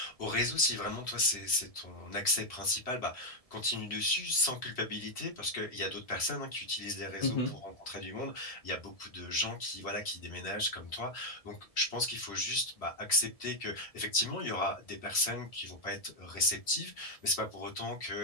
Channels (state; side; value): late; right; 1.7 ms